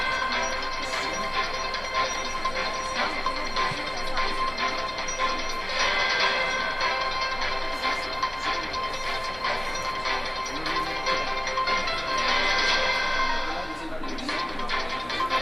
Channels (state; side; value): noise; left; hum, 20 dB below the sound